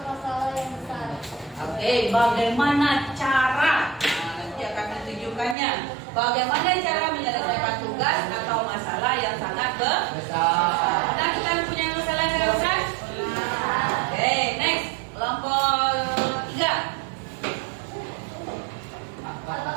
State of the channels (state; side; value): drops out; left; at 5.6 s